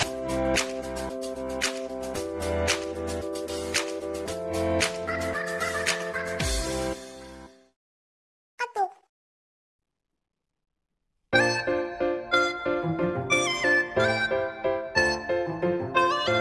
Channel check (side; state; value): both; identical; correlation 1.00